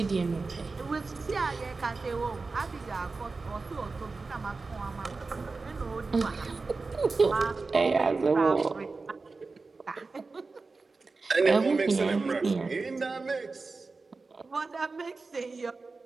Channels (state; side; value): quieter; left; 4.0 dB